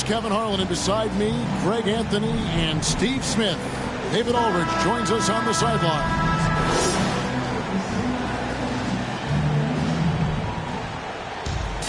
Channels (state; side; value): identical; both; correlation 1.00